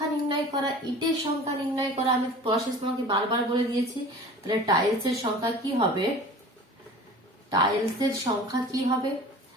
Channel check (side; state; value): both; normal; correlation 0.41